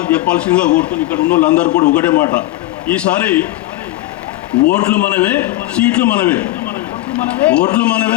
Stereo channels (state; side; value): quieter; right; 17.3 dB